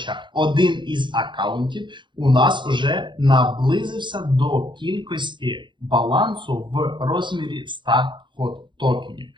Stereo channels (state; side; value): late; left; 0.23 ms